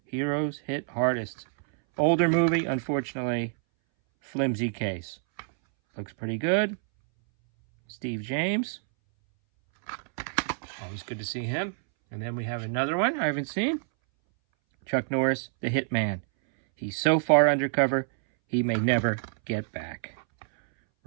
Heroes hit hardest. Older movie, unfortunately, flimsy case. Looks pretty good. Steve James. Always good to see him. And then we have another one I haven't seen. Chuck Norris, the Hitman. He's so far undercover, he may never get back.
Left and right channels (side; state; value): left; silent; 60 dB below the other